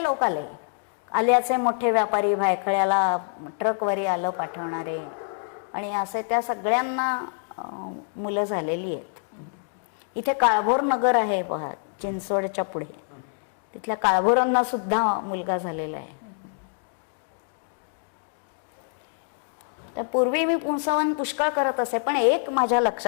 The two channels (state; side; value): silent; right; digital silence